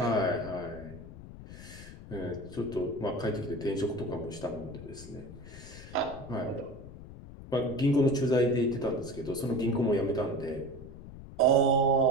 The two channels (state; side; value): noise; left; rumble, 15 dB below the sound